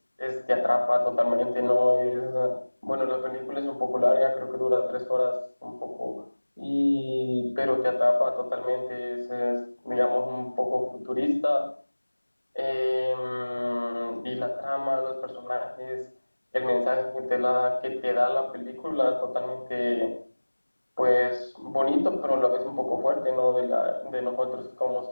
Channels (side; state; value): both; inverted; correlation -1.00